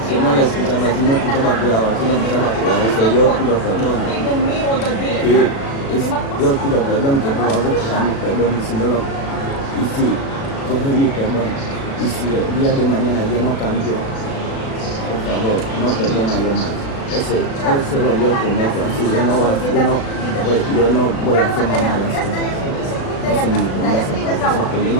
Si yo no la escuchaba, si no escuchaba cuidado, si no escuchaba cuidado, yo pido perdón. Yo pido perdón, que por favor coja mi perdón, y si no lo, y si coge mi perdón, y si el día de mañana yo no cambio, por favor, no perdona yo más. Ese lo yo prometo, así yo no voy a hacer más malas cosas. Esa es mi promesa, porque yo no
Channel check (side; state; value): right; late; 36 ms